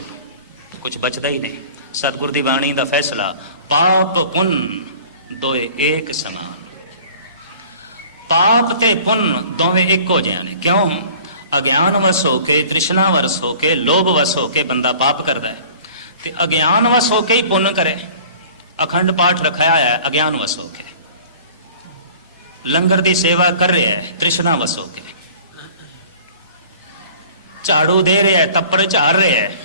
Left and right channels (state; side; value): inverted; both; correlation -0.47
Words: कुछ बचदा ही नहीं। सतगुर दी बाणी दा फैसला, पाप पुन दोए एक समान। पाप ते पुन दोवें इको जिहा ने। क्यों? अज्ञान वस होके, तृष्णा वस होके, लोभ वस होके बंदा पाप करता है, ते अज्ञान वस होके ही पुण्य करे। अखंड पाठ रखाया है अज्ञान वस होके, लंगर दी सेवा कर रहा है तृष्णा वस होके, झाड़ू दे रहा है, तप्पर झाड़ रहा है